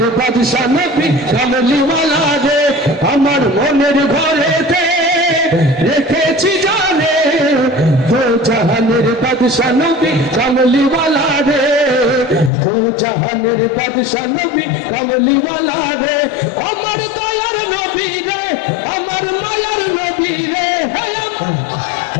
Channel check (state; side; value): drops out; right; at 12.5 s